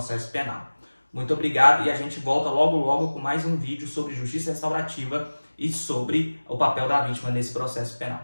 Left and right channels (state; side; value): inverted; both; correlation -1.00